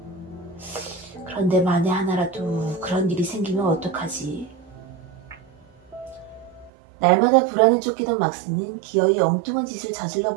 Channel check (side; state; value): left; drops out; at 6.7 s